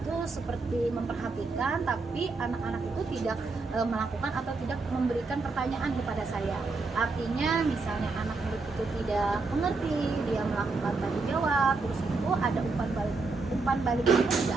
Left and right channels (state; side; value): quieter; left; 3.9 dB